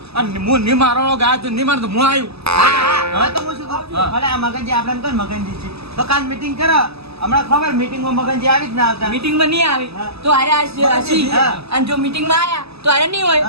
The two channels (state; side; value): late; left; 0.78 ms